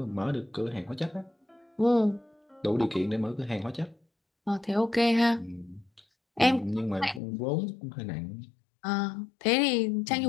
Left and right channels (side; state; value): right; drops out; at 7.2 s